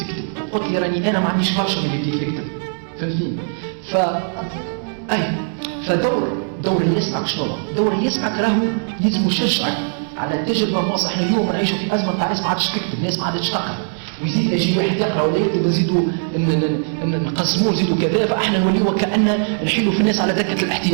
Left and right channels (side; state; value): left; silent; digital silence